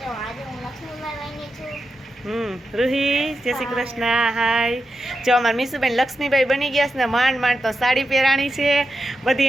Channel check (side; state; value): both; normal; correlation 0.89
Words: રૂહી, જય શ્રી કૃષ્ણ. હાય. જો અમારા મીસુબેન લક્ષ્મીબાઈ બની ગયા છે ને માંડ માંડ તો સાડી પહેરાણી છે. બધી